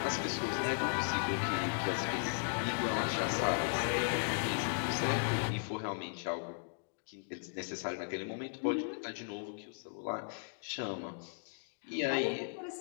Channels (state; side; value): silent; right; digital silence